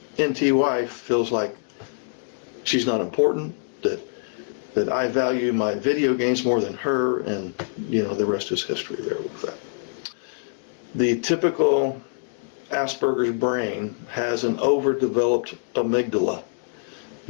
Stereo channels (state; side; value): silent; right; digital silence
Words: NT wife feels like she's not important, that I value my video games more than her, and the rest is history there with that. The typical Asperger's brain has an overdeveloped amygdala,